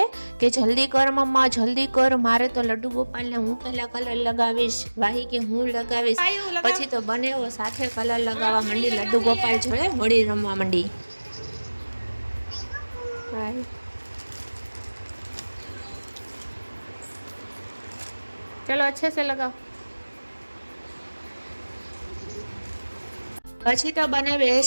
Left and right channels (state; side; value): inverted; both; correlation -1.00